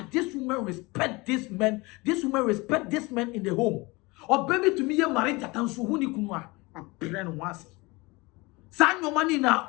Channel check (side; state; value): right; quieter; 24.2 dB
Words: this woman respect this man. This woman respect this man in the home. Or baby to me, you married that and so who ni kunwa a brand once. Sign your money now,